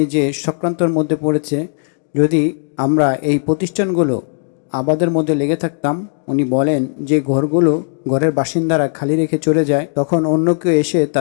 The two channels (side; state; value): right; silent; digital silence